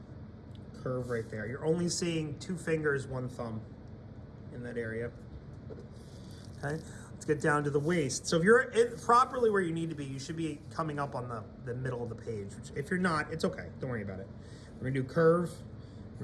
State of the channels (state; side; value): identical; both; correlation 1.00